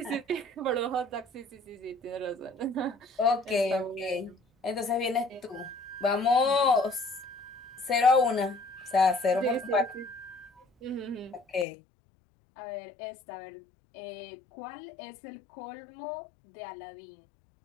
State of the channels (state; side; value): drops out; right; at 11.7 s